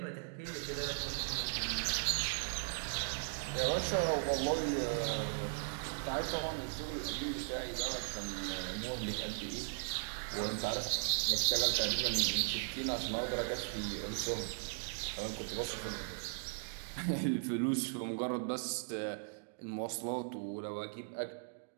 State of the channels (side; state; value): left; silent; digital silence